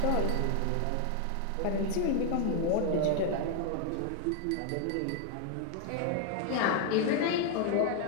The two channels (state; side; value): different; both; correlation 0.01